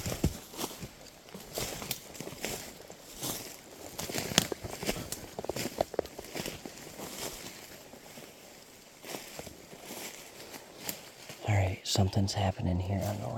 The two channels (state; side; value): identical; both; correlation 1.00